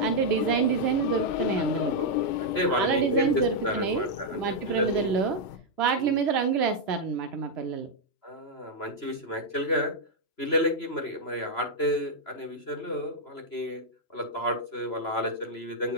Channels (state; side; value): late; right; 3.0 ms